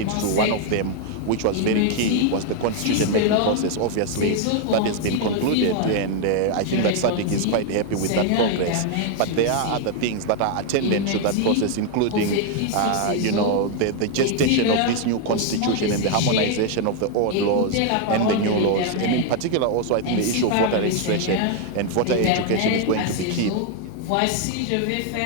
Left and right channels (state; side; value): different; both; correlation 0.00